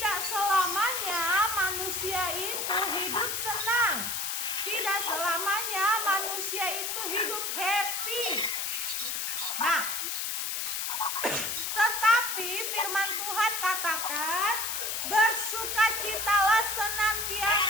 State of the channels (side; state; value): left; noise; hiss, 1 dB below the sound